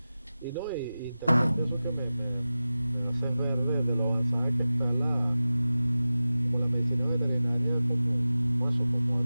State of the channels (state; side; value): inverted; both; correlation -0.96